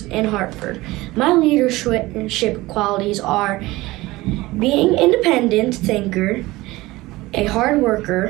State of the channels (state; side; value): quieter; left; 19.5 dB